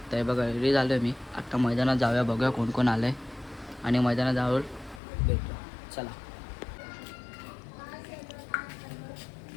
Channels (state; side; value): drops out; right; at 5.0 s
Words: बघा रेडी झालो आहे मी. आत्ता मैदानात जाऊया, बघूया कोण कोण आलं आहे आणि मैदानात जाऊन भेटूया. चला.